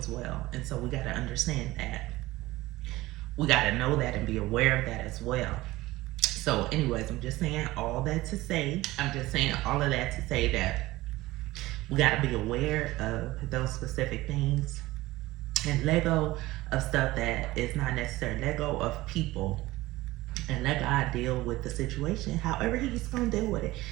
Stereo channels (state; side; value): quieter; left; 18.3 dB